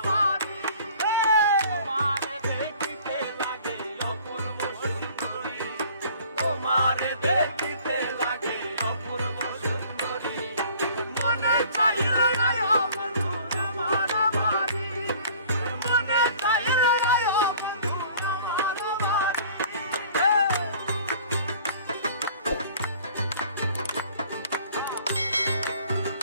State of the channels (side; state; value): both; inverted; correlation -0.51